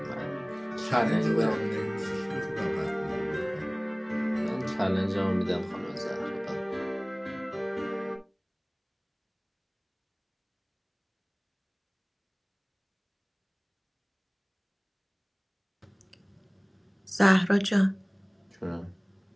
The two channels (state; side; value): identical; both; correlation 1.00